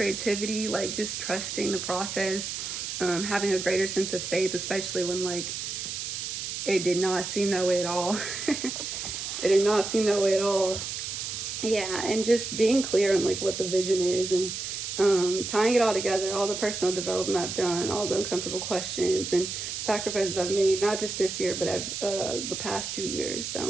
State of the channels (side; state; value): right; noise; hiss, 5 dB below the sound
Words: like just trusting the process, having a greater sense of faith, especially when like it did not seem that way at all. It did not seem that way at all. Yeah, and just being clear on like what the vision is, and tying it all together, all the personal development I've done, all the uncomfortable questions and sacrifices I've made, not just this year, but the past 2 years.